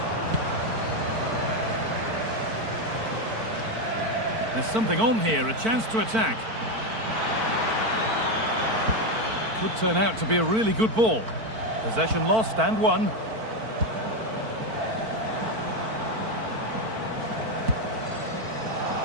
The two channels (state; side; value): late; left; 4.5 ms